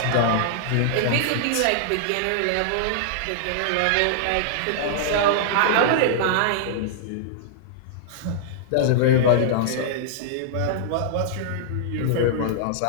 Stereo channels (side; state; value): both; different; correlation -0.01